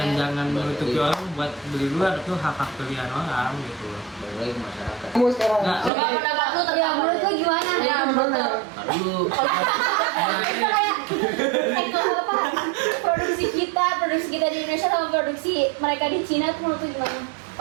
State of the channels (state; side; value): drops out; left; at 5.9 s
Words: jangan menutupi orang buat beli luar, itu hak pilihan orang gitu. Balik lagi ke masyarakat. Kamu sekarang. Nah, Coba pendapat lu Ya tentang menurut lo gimana? Ya, Gimana? Aduh, Kita kayak apa? Produksi kita di Indonesia sama produksi mereka di Cina tuh menurut lo gimana?